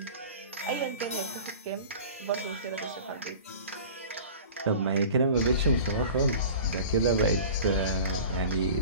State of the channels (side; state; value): both; inverted; correlation -0.39